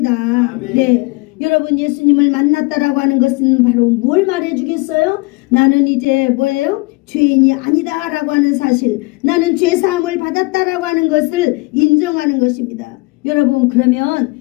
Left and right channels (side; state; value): right; quieter; 25.1 dB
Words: 아멘. 네. 여러분 예수님을 만났다라고 하는 것은 바로 뭘 말해주겠어요? 나는 이제 뭐예요? 죄인이 아니다라고 하는 사실, 나는 죄사함을 받았다라고 하는 것을 인정하는 것입니다. 여러분 그러면